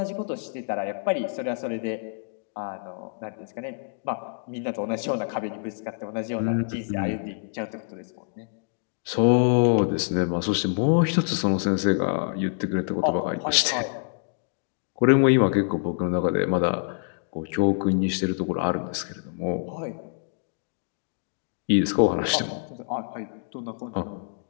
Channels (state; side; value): silent; right; digital silence